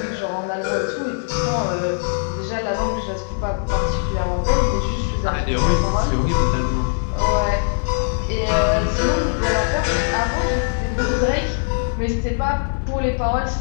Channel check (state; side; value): silent; right; 59 dB below the other